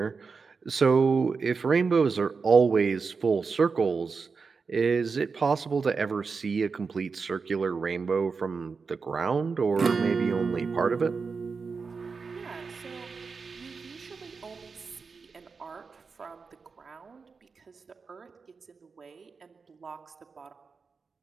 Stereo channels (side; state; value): left; quieter; 4.9 dB